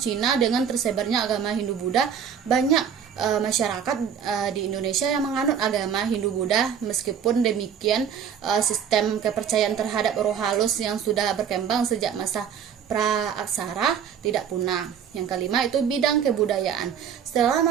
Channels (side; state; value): left; quieter; 7.9 dB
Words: Dengan tersebarnya agama Hindu-Buddha, banyak masyarakat di Indonesia yang menganut agama Hindu-Buddha. Meskipun demikian, sistem kepercayaan terhadap roh halus yang sudah berkembang sejak masa pra-aksara tidak punah. Yang kelima itu bidang kebudayaan. Setelah